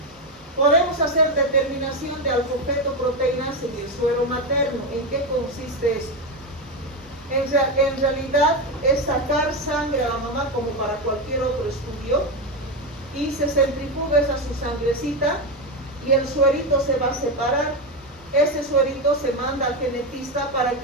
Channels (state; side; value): normal; both; correlation 0.12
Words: Podemos hacer determinación de alfa-fetoproteínas en el suero materno. ¿En qué consiste esto? En realidad es sacar sangre a la mamá como para cualquier otro estudio y se centrifuga esa su sangrecita y el suerito se va a separar. Ese suerito se manda al genetista para